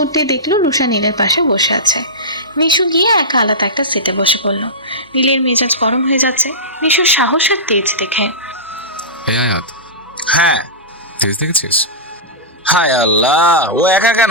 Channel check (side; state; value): both; normal; correlation -0.16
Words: উঠতে দেখলো রুষা নীলের পাশে বসে আছে। নিশু গিয়ে একা আলাদা একটা সিটে বসে পড়লো। নীলের মেজাজ গরম হয়ে যাচ্ছে নিশুর সাহস আর তেজ দেখে। এই আয়াত, হ্যাঁ। তেজ দেখেছিস? হায় আল্লাহ, ও একা